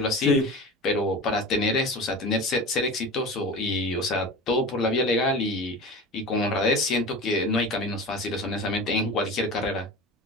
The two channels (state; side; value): normal; both; correlation 0.32